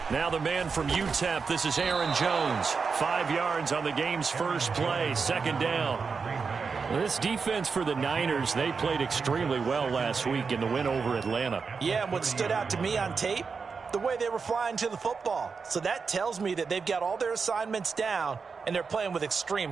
Now the man from UTEP, this is Aaron Jones. 5 yards on the game's first play, second down. This defense for the Niners, they played extremely well last week in the win over Atlanta. Yeah, and what stood out to me on tape, the way they were flying to the football. So that tells me that they've got all their assignments down, and they're playing with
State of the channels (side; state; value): left; quieter; 5.2 dB